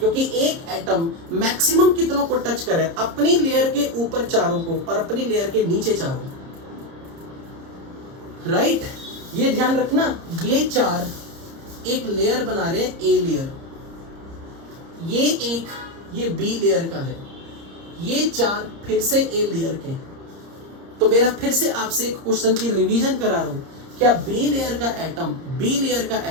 एक एटम मैक्सिमम कितनों को टच कर रहा है? अपनी लेयर के ऊपर 4 को और अपनी लेयर के नीचे 4 को। राइट, ये ध्यान रखना, ये 4 एक लेयर बना रहे हैं, ए लेयर, ये बी लेयर का है, ये 4 फिर से ए लेयर के। तो मेरा फिर से आपसे एक क्वेश्चन की रिवीजन करा रहा हूं, क्या बी लेयर का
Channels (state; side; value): late; left; 30 ms